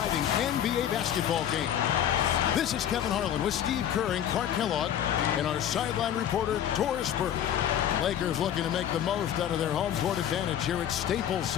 NBA basketball game. This is Kevin Harlan with Steve Kerr and Clark Kellogg and our sideline reporter, Doris Burke. Lakers looking to make the most out of their home court advantage here at Staples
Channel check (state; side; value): quieter; right; 10.2 dB